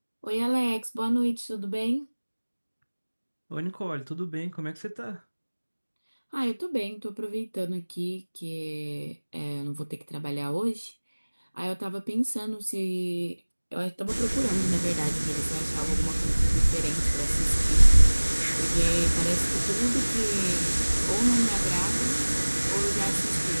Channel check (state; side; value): inverted; both; correlation -1.00